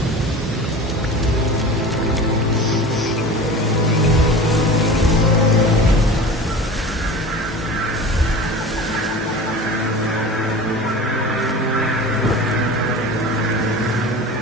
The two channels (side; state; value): both; normal; correlation 0.35